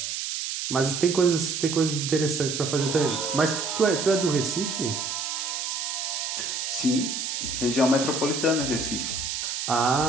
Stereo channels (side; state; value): right; noise; hiss, 3 dB below the sound